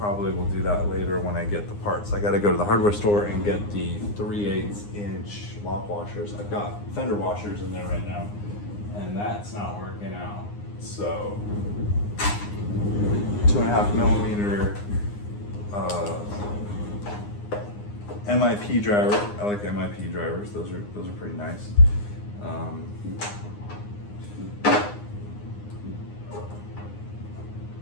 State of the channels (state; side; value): late; right; 9.7 ms